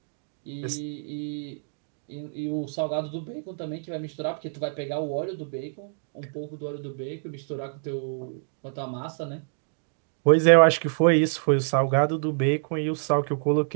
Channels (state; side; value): silent; left; digital silence